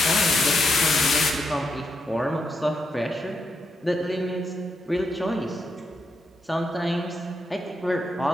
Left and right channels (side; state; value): both; normal; correlation 0.81